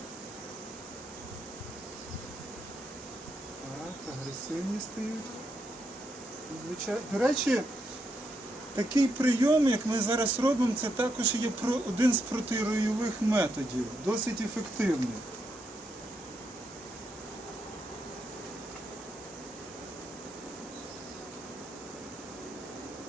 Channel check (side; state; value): both; normal; correlation 0.80